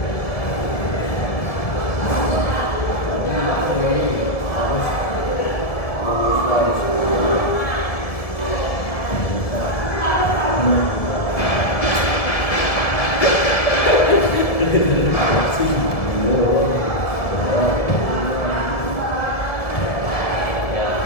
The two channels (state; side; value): late; right; 1.7 ms